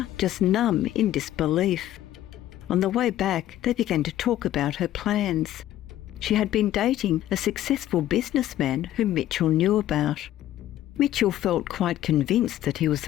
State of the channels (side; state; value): right; quieter; 13.1 dB